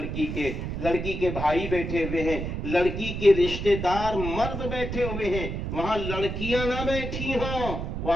کے بھائی بیٹھے ہوئے ہیں، لڑکی کے رشتہ دار مرد بیٹھے ہوئے ہیں، وہاں لڑکیاں نہ بیٹھی ہوں،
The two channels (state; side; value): noise; right; rumble, 4 dB below the sound